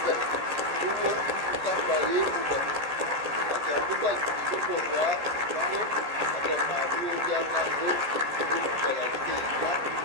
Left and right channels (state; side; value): late; left; 14 ms